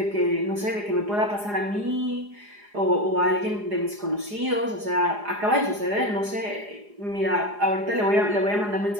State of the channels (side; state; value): left; late; 4.8 ms